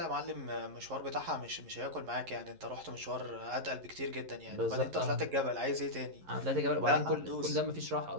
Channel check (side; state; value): left; late; 11 ms